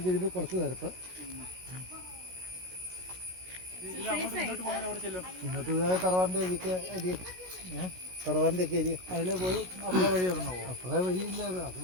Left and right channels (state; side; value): late; left; 16 ms